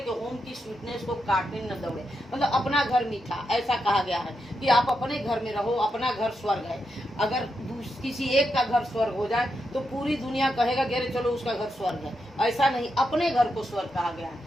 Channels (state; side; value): normal; both; correlation 0.85